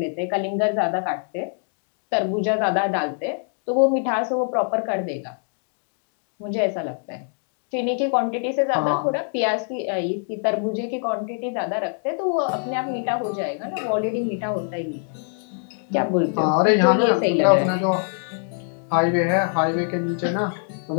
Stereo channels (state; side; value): silent; right; 60 dB below the other